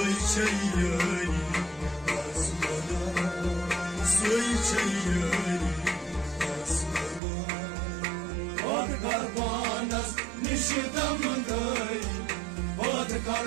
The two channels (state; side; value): drops out; left; at 7.2 s